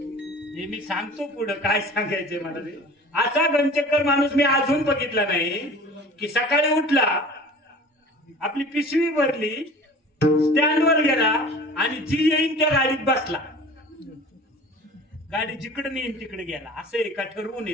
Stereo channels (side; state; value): both; normal; correlation 0.42